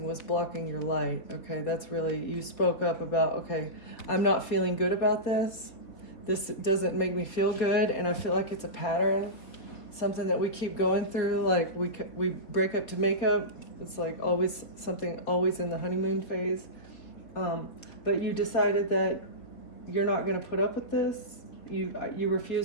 was blocking your light. Okay, that's really, you spoke up about, okay, I'm not feeling good about this. This doesn't make me feel good, and I feel like it's a pattern, something that we keep going through. Like we break up to make up. It's like always something, always in the honeymoon phase. But you decided that you're not going to put up with this. You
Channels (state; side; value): late; right; 4.2 ms